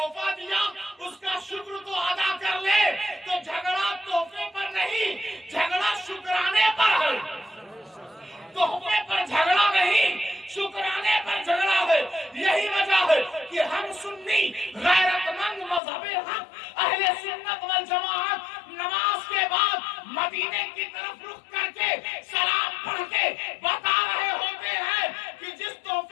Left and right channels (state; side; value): drops out; right; at 15.8 s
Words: دیا اس کا شکر تو ادا کر لے؟ تو جھگڑا تحفے پر نہیں، جھگڑا شکرانے پر ہے، تحفے پر جھگڑا نہیں، شکرانے پر جھگڑا ہے۔ یہی وجہ ہے کہ ہم سنی غیرت مند مذہب حق اہل سنت والجماعت نماز کے بعد مدینے کی طرف رخ کر کے سلام پڑھ کے بتا رہے ہوتے ہیں کہ جس